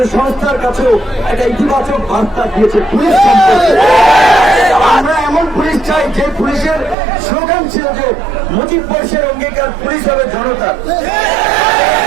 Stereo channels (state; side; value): drops out; left; at 7.0 s